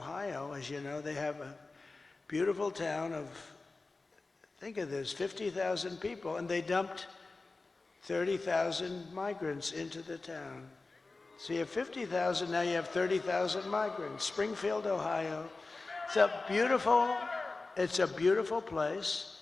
as you know, they have a beautiful town of, think of this, 50,000 people, and they dumped 30,000 migrants into the town. So you have 50,000, now you have 30,000 migrants. Springfield, Ohio. It's a beautiful place,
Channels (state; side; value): quieter; right; 3.6 dB